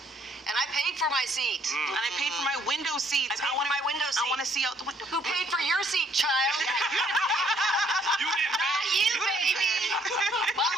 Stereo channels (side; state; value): both; normal; correlation 0.65